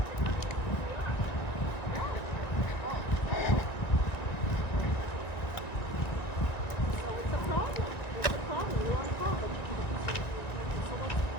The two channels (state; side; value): late; right; 1.8 ms